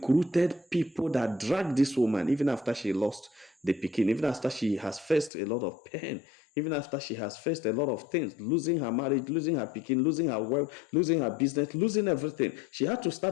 people that dragged this woman, even after she lost the pikin, even after she has faced a lot of pain, even after she has faced a lot of things, losing her marriage, losing her pikin, losing her wealth, losing her business, losing everything. She had to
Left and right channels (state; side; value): drops out; right; at 5.3 s